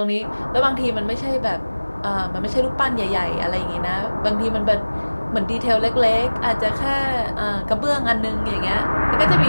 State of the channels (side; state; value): both; inverted; correlation -1.00